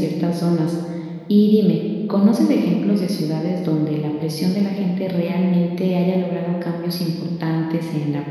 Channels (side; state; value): both; identical; correlation 1.00